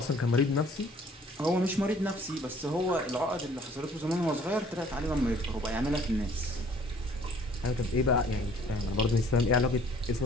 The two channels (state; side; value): normal; both; correlation 0.57